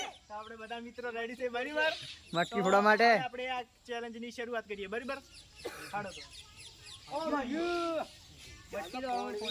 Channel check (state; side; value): identical; both; correlation 1.00